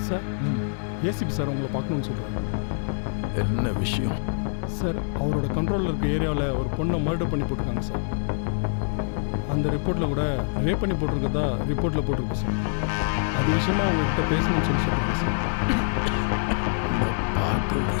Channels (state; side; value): silent; right; digital silence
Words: சார், ஏசிபி சார் உங்களை பார்க்கணும்னு சொல்கிறாங்க. என்ன விஷயம்? சார், அவரோட கண்ட்ரோலில் இருக்க ஏரியாவில் ஒரு பொண்ணை மர்டர் பண்ணி போட்டிருக்காங்க சார். அந்த ரிப்போர்ட்டில் கூட ரேப் பண்ணி போட்டிருக்கதா ரிப்போர்ட்டில் போட்டிருக்கு சார். அது விஷயமா உங்ககிட்ட பேசணும்னு சொல்கிறாங்க சார். நான் பார்க்க